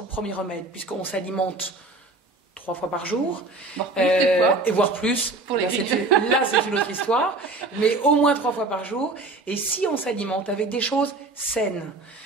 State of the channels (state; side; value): quieter; left; 3.2 dB